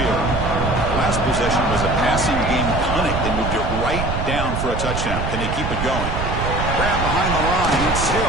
Last possession was a passing game clinic. They moved it right down for a touchdown. Can they keep it going? Grab behind the line. It's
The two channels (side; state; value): right; noise; rumble, 3 dB below the sound